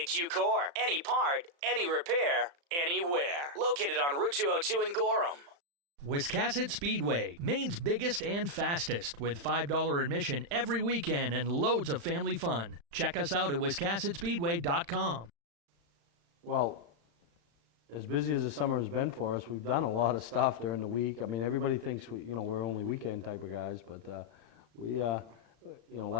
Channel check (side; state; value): left; late; 35 ms